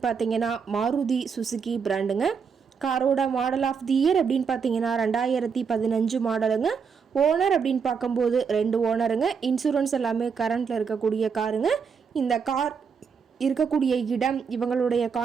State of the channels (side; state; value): left; quieter; 6.1 dB